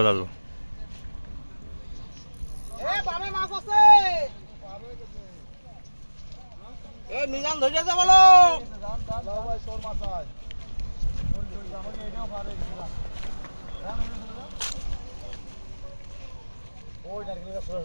মিজান ধরেছে বলো।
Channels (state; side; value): inverted; both; correlation -1.00